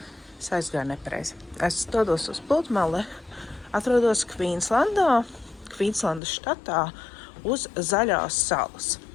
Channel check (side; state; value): right; drops out; at 6.2 s